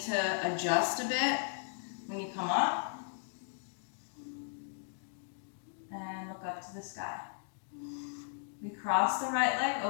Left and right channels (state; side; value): silent; right; digital silence